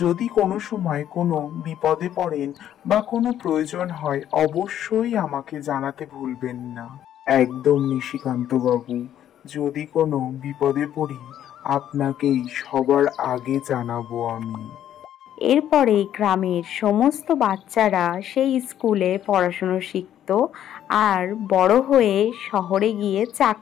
কোনো সময় কোনো বিপদে পড়েন বা কোনো প্রয়োজন হয়, অবশ্যই আমাকে জানাতে ভুলবেন না। একদম নিশিকান্ত বাবু, যদি কোনো বিপদে পড়ি আপনাকেই সবার আগে জানাবো আমি। এরপরে গ্রামের সমস্ত বাচ্চারা সেই স্কুলে পড়াশুনো শিখত আর বড় হয়ে শহরে গিয়ে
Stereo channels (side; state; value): right; quieter; 10.9 dB